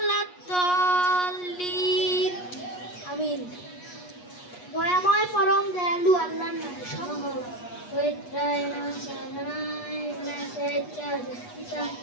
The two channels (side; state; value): right; late; 8.3 ms